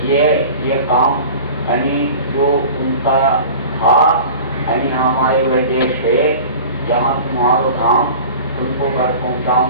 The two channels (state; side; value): inverted; both; correlation -0.39